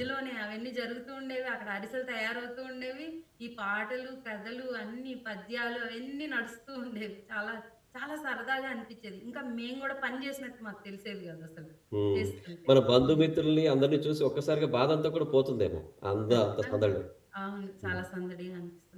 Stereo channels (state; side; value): identical; both; correlation 1.00